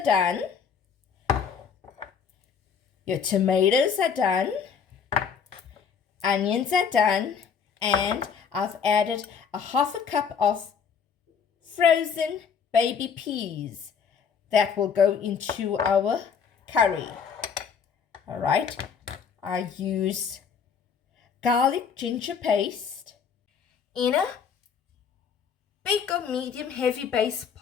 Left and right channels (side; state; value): right; quieter; 6.6 dB